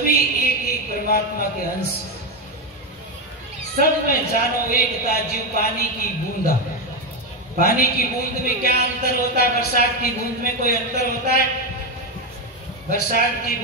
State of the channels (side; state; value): both; normal; correlation 0.08